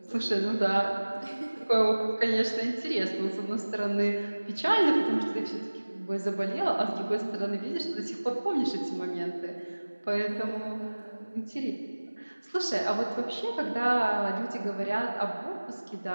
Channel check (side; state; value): both; inverted; correlation -1.00